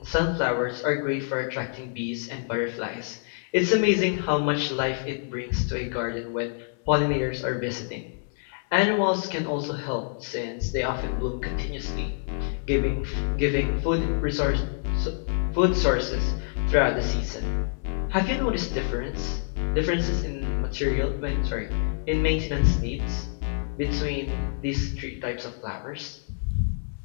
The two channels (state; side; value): silent; right; 60 dB below the other